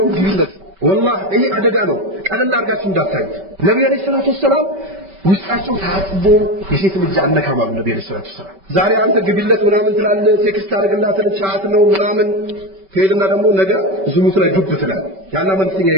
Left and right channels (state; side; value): late; left; 5.2 ms